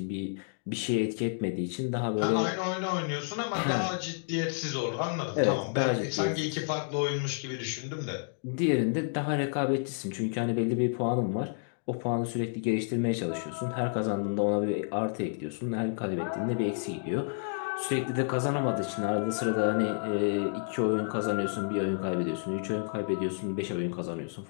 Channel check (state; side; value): silent; right; digital silence